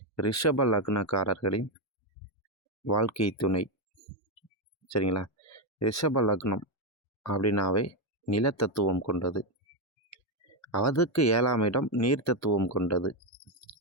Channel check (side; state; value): both; normal; correlation 0.07